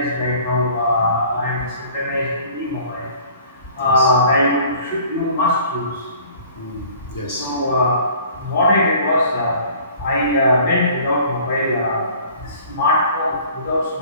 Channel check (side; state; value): both; inverted; correlation -0.50